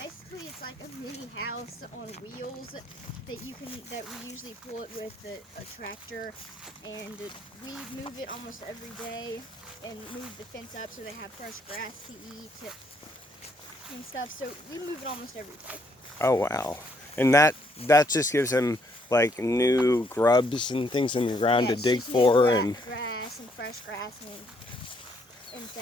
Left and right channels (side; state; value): both; normal; correlation 0.71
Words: it's like a mini house on wheels that we usually pull it with a tractor, and we move it almost every day and move the fence up so they have fresh grass to eat and stuff. So we move it almost every day. Oh wow. And that just gives them like new grubs and things in the ground to dig for, and grass and fresh grass and